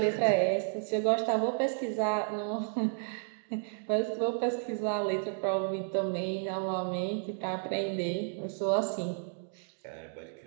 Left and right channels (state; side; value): silent; left; 56 dB below the other